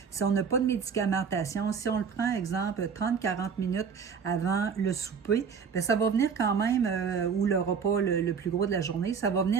si on n'a pas de médicamentation, si on le prend, exemple, 30-40 minutes avant le souper, bien, ça va venir quand même, ou le repas le plus gros de la journée, ça va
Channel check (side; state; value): left; quieter; 6.2 dB